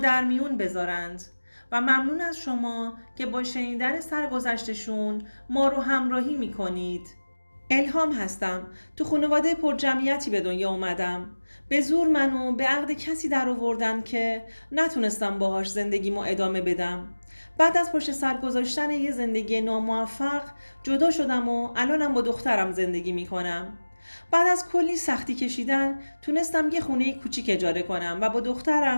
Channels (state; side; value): inverted; both; correlation -1.00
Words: میون بذارند و ممنون از شما که با شنیدن سرگذشتشون ما رو همراهی میکنید. الهام هستم. تو خانواده پر جمعیتی به دنیا اومدم. به زور منو به عقد کسی در آوردن که نتونستم باهاش زندگیمو ادامه بدم. بعد از پشت سر گذاشتن یه زندگی ناموفق جدا شدم و الانم با دخترم زندگی میکنم. بعد از کلی سختی کشیدن تونستم یه خونه کوچیک اجاره کنم و با